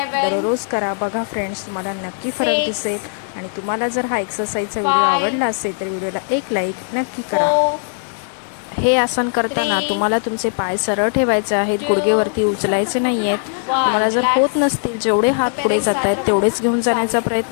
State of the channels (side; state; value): right; silent; digital silence